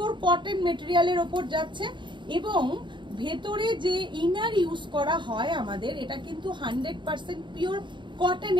কটন মেটেরিয়ালের ওপর যাচ্ছে এবং ভেতরে যে ইনার ইউজ করা হয় আমাদের এটা কিন্তু 100% পিওর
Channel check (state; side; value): late; left; 0.23 ms